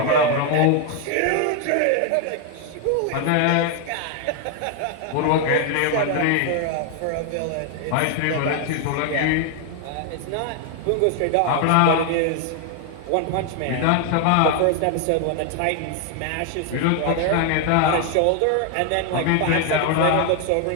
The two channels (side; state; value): both; different; correlation 0.00